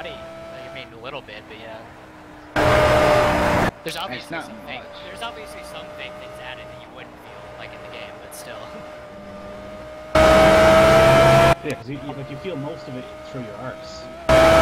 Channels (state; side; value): identical; both; correlation 1.00